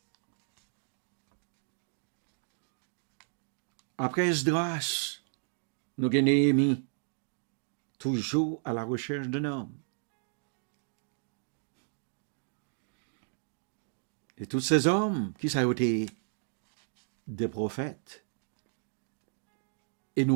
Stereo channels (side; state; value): left; silent; digital silence